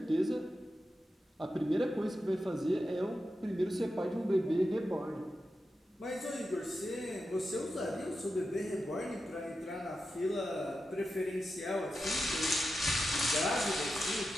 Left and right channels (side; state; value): both; normal; correlation 0.90